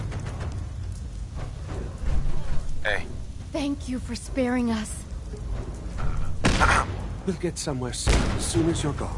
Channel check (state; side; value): identical; both; correlation 1.00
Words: Hey. Thank you for sparing us. We'll get somewhere safe as soon as you're